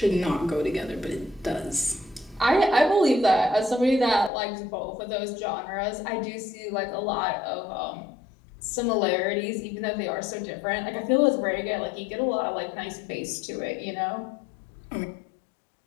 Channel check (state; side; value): drops out; right; at 4.3 s